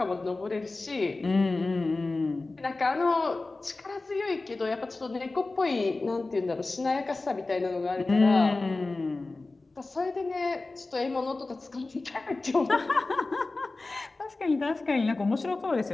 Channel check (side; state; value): right; quieter; 3.3 dB